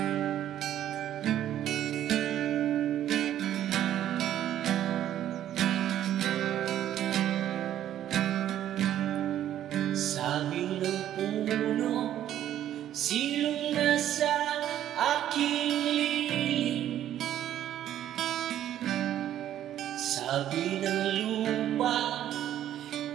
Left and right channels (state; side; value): quieter; left; 11.6 dB